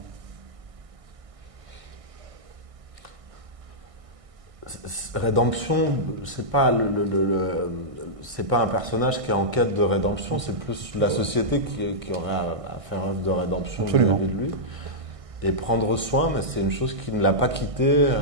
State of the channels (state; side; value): late; left; 1.6 ms